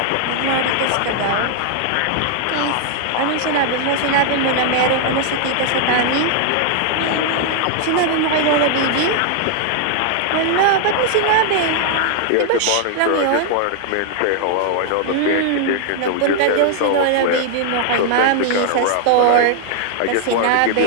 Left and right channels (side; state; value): both; different; correlation 0.00